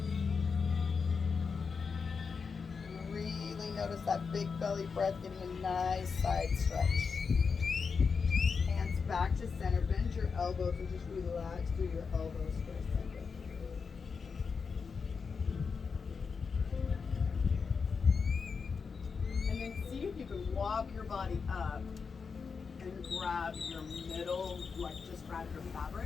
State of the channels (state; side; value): quieter; right; 5.4 dB